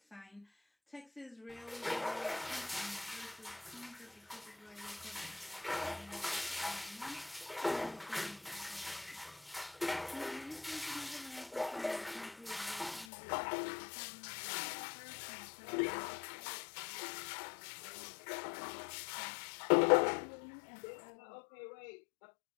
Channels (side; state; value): right; drops out; at 13.1 s